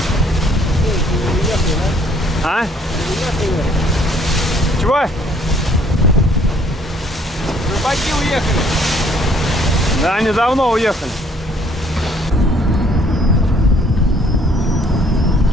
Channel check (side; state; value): both; normal; correlation 0.62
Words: А? Чего? Рыбаки уехали. Да, они давно уехали.